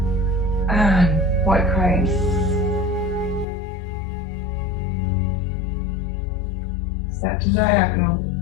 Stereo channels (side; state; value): right; drops out; at 3.5 s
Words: And white crane. Step to diagonal,